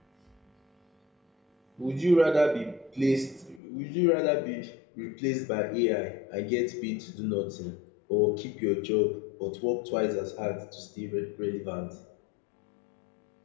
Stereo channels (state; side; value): drops out; right; at 3.6 s